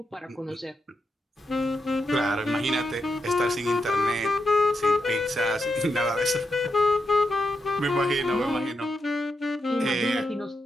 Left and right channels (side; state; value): both; normal; correlation 0.85